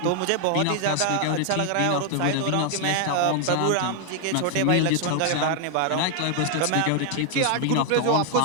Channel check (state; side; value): different; both; correlation 0.00